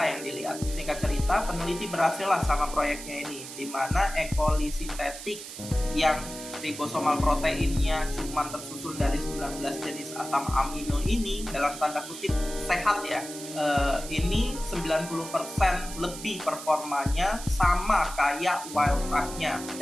yang dilihat. Singkat cerita, peneliti berhasil lah sama proyeknya ini, di mana E. coli sintetik yang ribosomal proteinnya cuma tersusun dari 19 jenis asam amino ini, dalam tanda kutip sehat ya, ini 90% lebih performanya sama kayak wild type-nya,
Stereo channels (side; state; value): right; noise; hiss, 11 dB below the sound